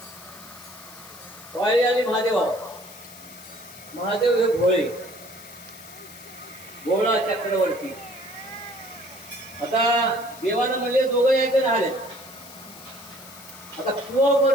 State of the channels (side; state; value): left; noise; hiss, 17 dB below the sound